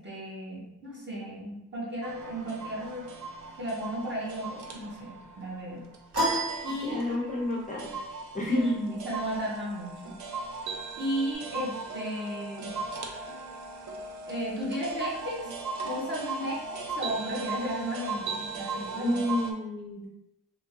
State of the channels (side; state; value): both; normal; correlation 0.40